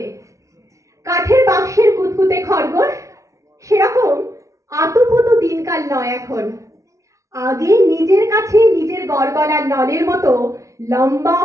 কাঠের বাক্সের কুতকুতে খরগোশ সেরকম আতুপুতু দিনকাল নয় এখন। আগে নিজের কাছে নিজের গড়গড়ার নলের মতো লম্বা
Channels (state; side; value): late; left; 0.15 ms